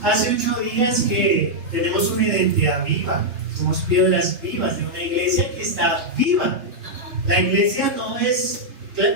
hace 8 días que tenemos una identidad viva, somos piedras vivas de una iglesia que está viva. La iglesia no es,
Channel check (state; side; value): late; left; 3.3 ms